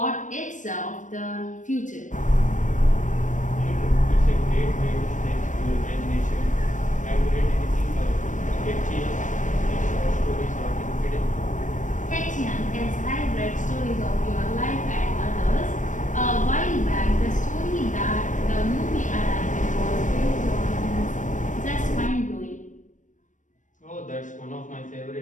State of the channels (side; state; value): right; late; 0.37 ms